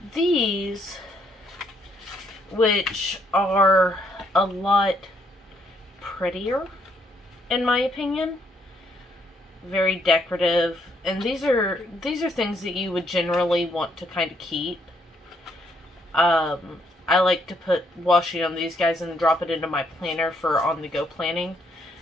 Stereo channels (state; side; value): normal; both; correlation 0.71